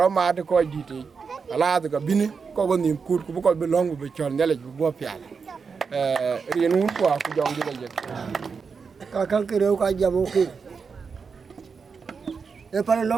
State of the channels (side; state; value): left; quieter; 5.5 dB